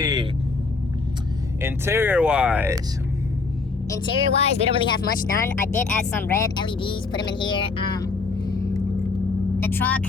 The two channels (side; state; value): right; quieter; 4.1 dB